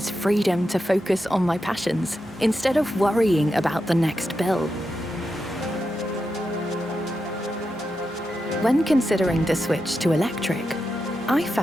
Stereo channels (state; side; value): normal; both; correlation 0.87